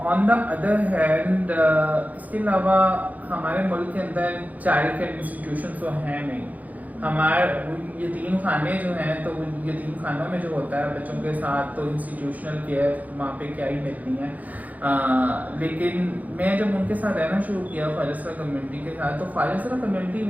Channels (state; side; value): late; left; 0.078 ms